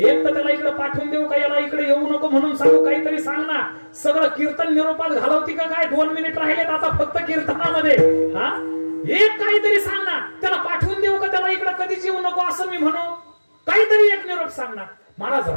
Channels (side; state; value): both; inverted; correlation -1.00